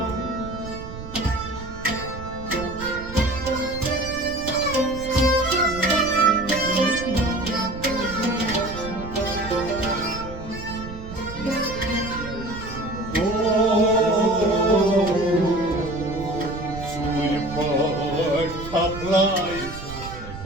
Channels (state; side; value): noise; right; rumble, 12 dB below the sound